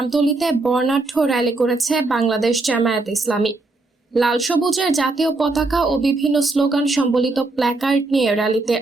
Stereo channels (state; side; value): quieter; left; 3.2 dB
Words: বর্ণাঢ্য র্যালি করেছে বাংলাদেশ জামায়াতে ইসলামী। লাল সবুজের জাতীয় পতাকা ও বিভিন্ন স্লোগান সম্বলিত প্ল্যাকার্ড নিয়ে র্যালিতে